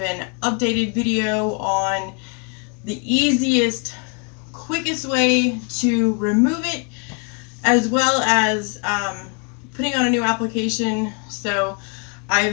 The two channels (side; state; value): right; quieter; 38.0 dB